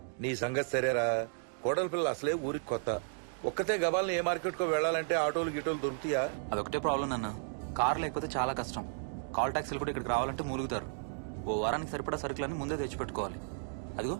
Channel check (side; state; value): left; silent; digital silence